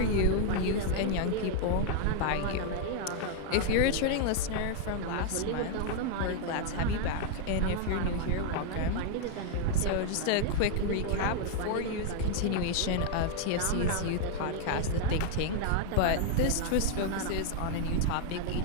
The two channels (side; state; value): both; different; correlation 0.00